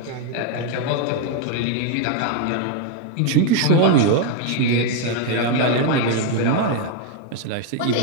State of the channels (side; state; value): both; different; correlation 0.01